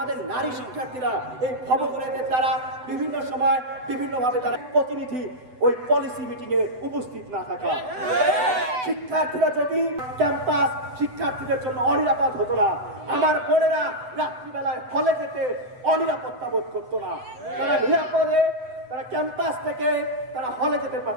নারী শিক্ষার্থীরা এই ভবঘুরেদের দ্বারা বিভিন্ন সময় বিভিন্নভাবে তারা প্রতিনিধি ওই পলিসি মিটিং এ উপস্থিত না থাকা। শিক্ষার্থীরা যদি ক্যাম্পাস শিক্ষার্থীদের জন্য অনিরাপদ হতো না, আমার বোনেরা রাত্রিবেলায় হলে যেতে অনিরাপত্তা বোধ করতো না, তারা নিরাপদে তারা ক্যাম্পাস থেকে তারা হলে যেতে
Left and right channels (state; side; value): late; left; 7.9 ms